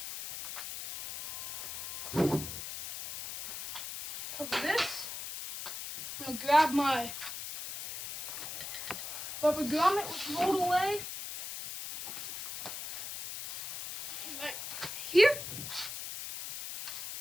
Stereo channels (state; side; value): noise; left; hiss, 7 dB below the sound